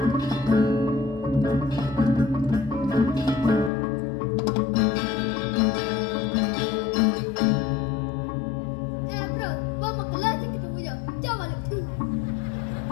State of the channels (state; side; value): drops out; right; at 3.7 s